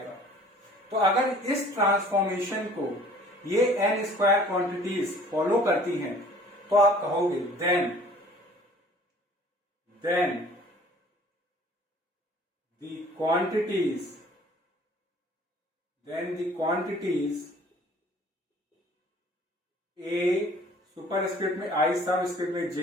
तो अगर इस ट्रांसफॉर्मेशन को ये एन स्क्वायर क्वांटिटीज फॉलो करती हैं तो आप कहोगे then the quantities A superscript में I सबस्क्रिप्ट में J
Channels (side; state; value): both; normal; correlation 0.52